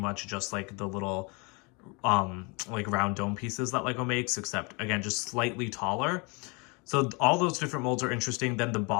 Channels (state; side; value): quieter; right; 30.3 dB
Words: just the little round dome pieces that LEGO makes, except again, just slightly taller. So all those different molds are interesting. Then the